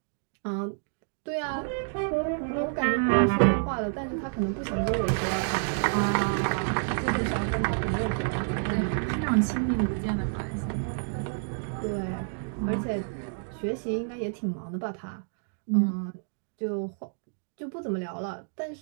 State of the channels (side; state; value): left; silent; digital silence